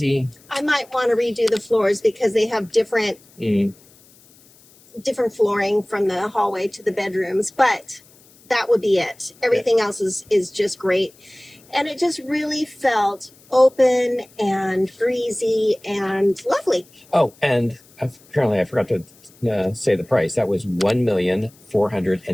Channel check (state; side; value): noise; left; hiss, 28 dB below the sound